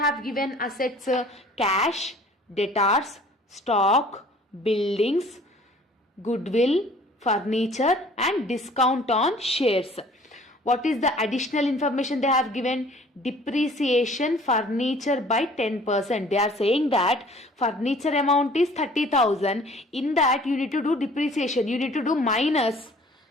given assets? Cash, debtors, stock, buildings, goodwill, furniture and discount on shares. What is the additional information they have given? Depreciation furniture by 10%. They are saying that furniture amount is 30,000. In that you need to do depreciation. You need to do minus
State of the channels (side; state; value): both; normal; correlation 0.52